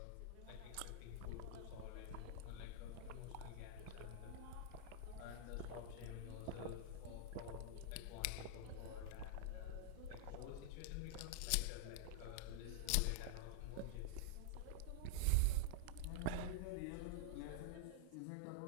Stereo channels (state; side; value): different; both; correlation 0.00